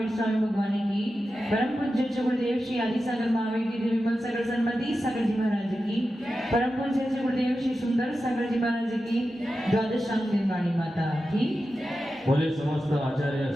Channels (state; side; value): normal; both; correlation 0.91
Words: स्वामी भगवान की, परम पूज्य गुरुदेव श्री आदि सागर महावीर की, विमल सागर सन्मति सागर जी महाराज की, परम पूज्य गुरुदेव श्री सुंदर सागर जी महाराज की, द्वादशांग निर्वाणी माता की, बोले समस्त आचार्य